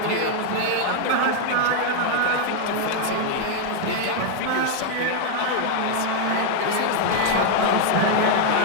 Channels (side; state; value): both; different; correlation 0.00